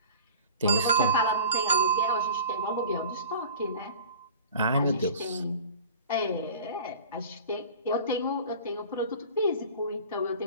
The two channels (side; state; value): both; inverted; correlation -0.41